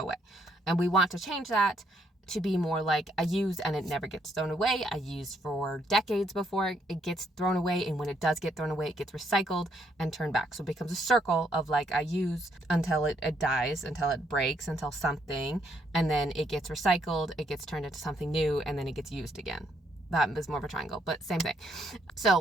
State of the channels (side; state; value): both; normal; correlation 0.72